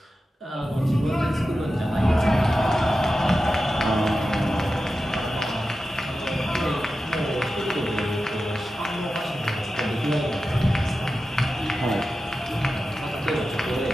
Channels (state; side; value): normal; both; correlation 0.93